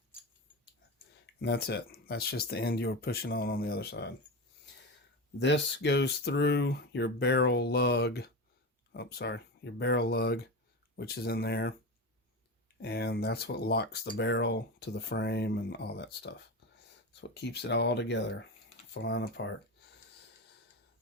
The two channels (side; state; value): both; normal; correlation 0.22